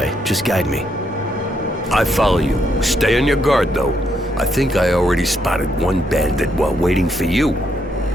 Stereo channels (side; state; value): both; normal; correlation 0.76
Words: Just guide me. I follow you. Stay on your guard, though. I think I already spotted one bandit while waiting for you.